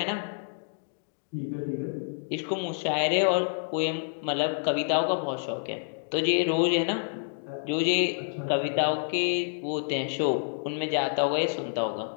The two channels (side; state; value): right; silent; digital silence